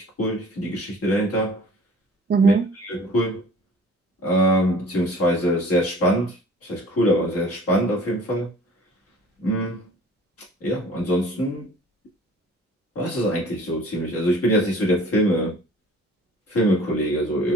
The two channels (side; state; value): both; normal; correlation 0.48